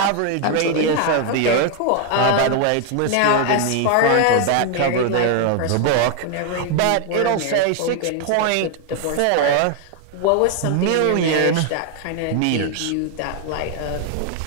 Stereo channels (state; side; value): different; both; correlation 0.01